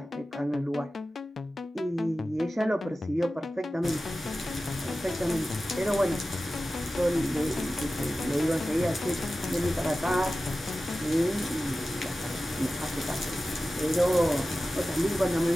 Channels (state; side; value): normal; both; correlation 0.95